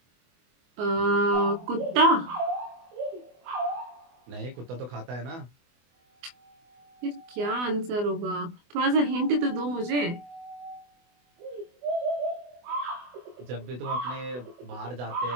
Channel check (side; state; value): left; late; 24 ms